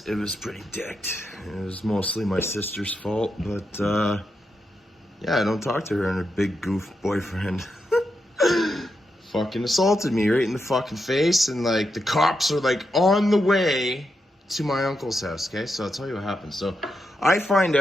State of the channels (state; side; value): normal; both; correlation 0.85